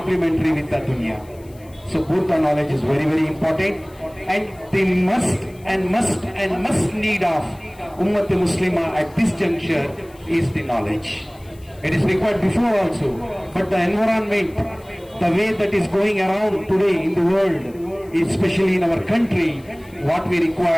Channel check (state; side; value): noise; left; hiss, 28 dB below the sound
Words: with the dunya. So both the knowledge is very, very important, and the must need of Ummat Muslima at this juncture is the knowledge. It is required before also, but the environment, the way that is going around today in the world, especially in our country, what we